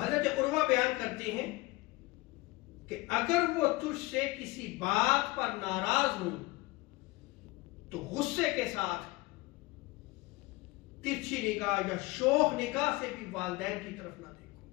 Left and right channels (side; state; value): right; quieter; 21.8 dB